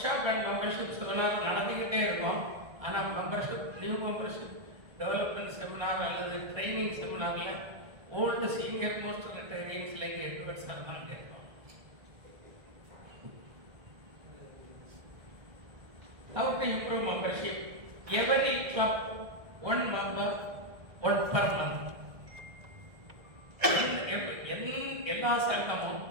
shop and membership seminar நடந்துக்கிட்டே இருக்கும். ஆனால் நியூ மெம்பர்ஷிப் டெவலப்மெண்ட் செமினார் அல்லது ட்ரைனிங் செமினாரில் old senior most retires like Edwards இருந்தாங்க இருக்கும். How to improve membership? Every club, 1 member, 1 per month. எல்லா சங்கமும்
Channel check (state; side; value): late; left; 1.7 ms